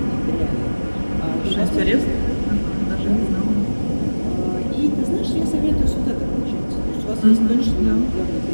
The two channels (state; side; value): inverted; both; correlation -1.00